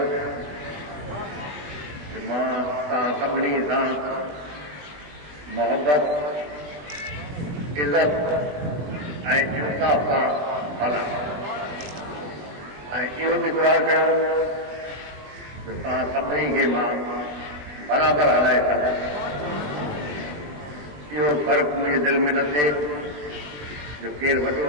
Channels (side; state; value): left; late; 20 ms